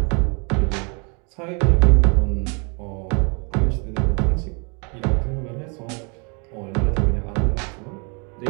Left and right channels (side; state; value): left; quieter; 34.0 dB